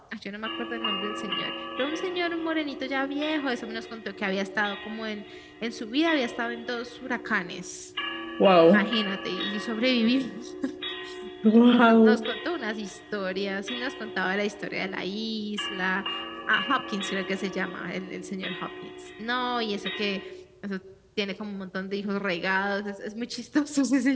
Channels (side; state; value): both; identical; correlation 1.00